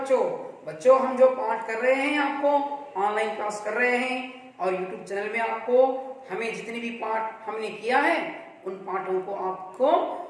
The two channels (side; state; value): both; identical; correlation 1.00